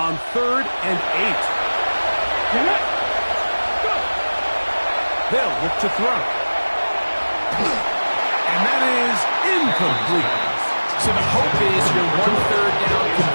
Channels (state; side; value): inverted; both; correlation -1.00